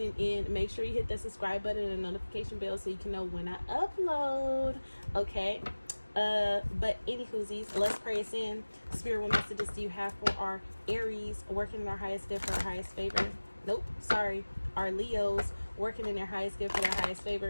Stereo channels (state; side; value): inverted; both; correlation -1.00